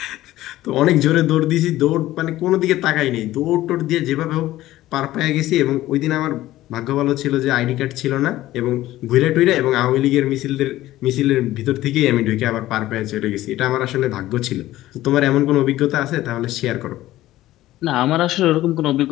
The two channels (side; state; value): right; quieter; 15.4 dB